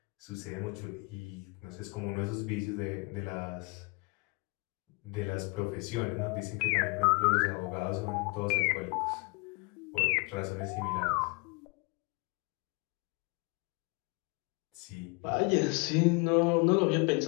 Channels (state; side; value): quieter; right; 29.4 dB